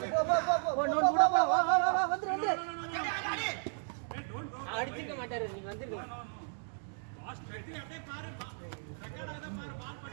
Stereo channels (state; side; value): silent; left; digital silence